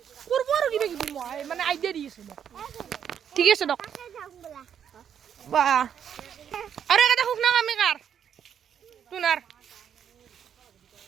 কৰব আৰু কিবা কিবি মই মানে আইডিয়া দিছিল ঠিক আছে দক বা আরে এটা হুক না আমি কার তুনার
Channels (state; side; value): quieter; left; 8.6 dB